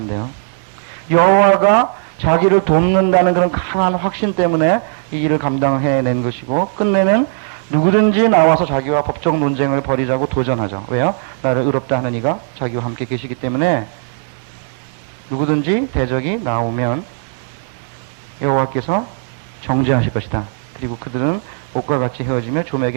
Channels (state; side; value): silent; left; digital silence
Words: 여호와가 자기를 돕는다는 그런 강한 확신 때문에 이 일을 감당해낸 것이고, 끝내는 누구든지 나와서 자기와 법적 논쟁을 벌이자고 도전하죠. 왜요? 나를 의롭다 하는 이가 자기와 함께 계시기 때문에 누구든지 대적이 나오면 여호와께서 정죄하실 것이다. 그리고 그들은 옷과 같이 헤어지며